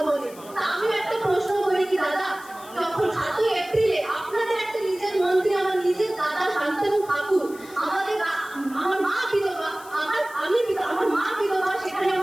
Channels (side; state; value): left; noise; hiss, 20 dB below the sound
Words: বলে। তা আমি একটা প্রশ্ন করি কি দাদা, যখন 7ই এপ্রিলে আপনাদের একটা নিজের মন্ত্রী, আমার নিজের দাদা শান্তনু ঠাকুর, আমার মা বিধবা, আমার মা বিধবা, সেখানে